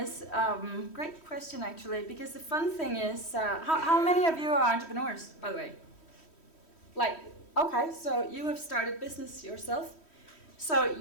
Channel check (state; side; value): late; right; 3.1 ms